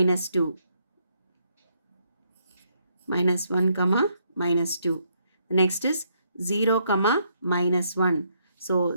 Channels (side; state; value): both; inverted; correlation -0.74